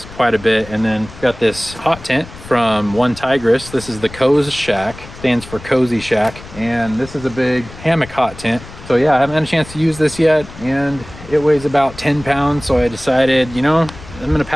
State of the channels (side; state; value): left; noise; rumble, 17 dB below the sound